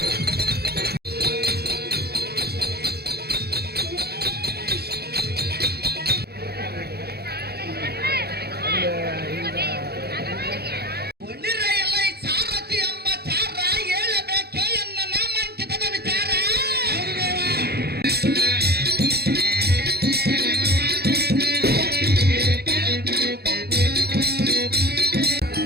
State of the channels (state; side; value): late; left; 0.46 ms